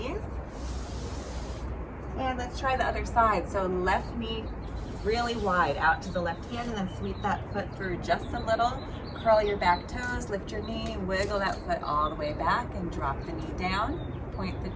And let's try the other side. So left knee really wide out to the left hand, and then sweep that foot through just a little. Curl your back toes, lift your knee, wiggle that foot all the way back and drop the knee down. Point the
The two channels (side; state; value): both; identical; correlation 1.00